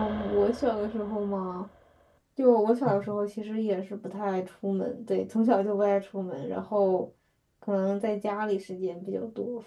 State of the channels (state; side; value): identical; both; correlation 1.00